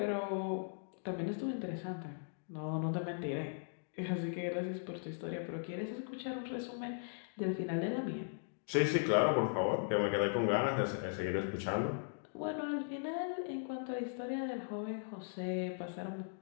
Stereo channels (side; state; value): right; silent; digital silence